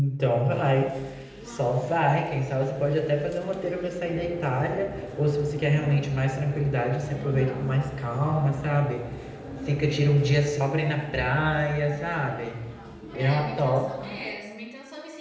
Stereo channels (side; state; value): both; identical; correlation 1.00